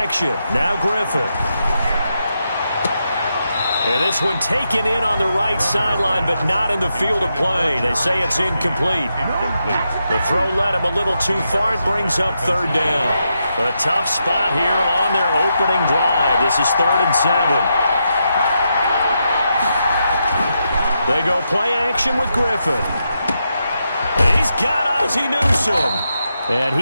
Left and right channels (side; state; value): both; inverted; correlation -0.84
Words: action. Now Griffin. And this one taken in on the right sideline, but not in the field of play. They say it's incomplete. The throw led him a little too far. It brings up 3rd down. A tough spot here on their opening drive. This is 3rd and 7. They go play action with Griffin. He's got Ozzie Newsome. And